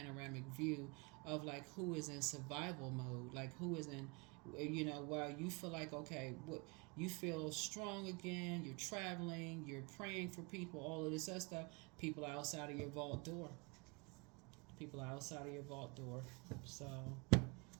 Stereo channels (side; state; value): left; quieter; 29.6 dB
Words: view of like who is in survival mode, like who is in, while you feel like, okay, what you feel strong again, you're traveling, you're praying for people, all of this other stuff. People are outside of your vault door. People are outside of your vault door. So,